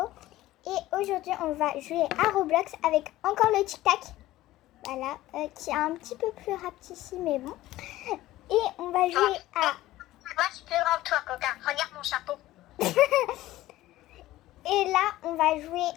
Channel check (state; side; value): quieter; right; 16.0 dB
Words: et aujourd'hui on va jouer à Roblox avec encore le tic tac, voilà, qui est un petit peu plus rapetissi mais bon, et on va jouer à... Moi je suis plus grand que toi Coca, regarde mon chapeau. Et là on va jouer